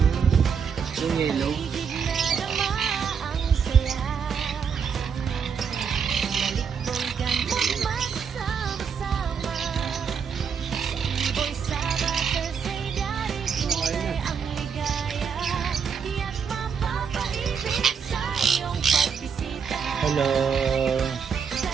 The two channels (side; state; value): left; quieter; 6.6 dB